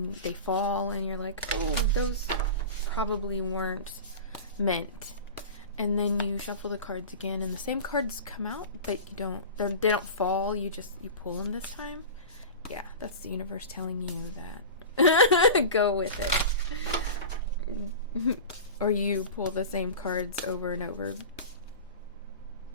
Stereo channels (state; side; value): inverted; both; correlation -0.31